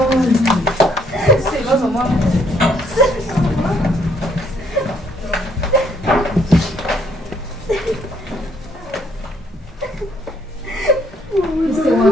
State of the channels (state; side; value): normal; both; correlation 0.68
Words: sibazo mama Ese